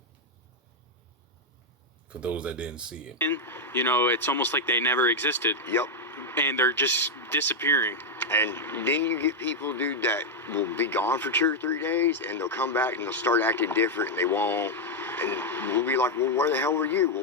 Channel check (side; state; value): both; normal; correlation 0.01